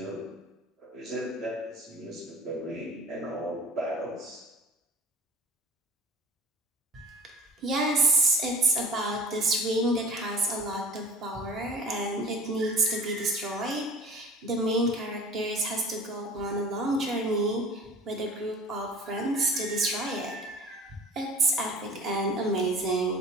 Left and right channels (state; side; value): normal; both; correlation 0.44